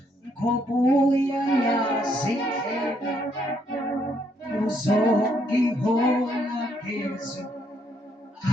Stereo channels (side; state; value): both; normal; correlation 0.72